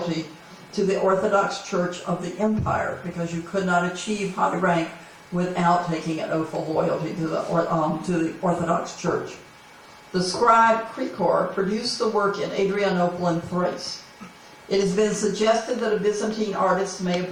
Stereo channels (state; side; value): identical; both; correlation 1.00